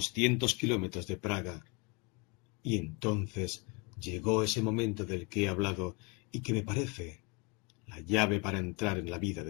kilómetros de Praga. Y entonces llegó ese momento del que he hablado y que me parece la llave para entrar en la vida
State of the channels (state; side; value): quieter; right; 30.7 dB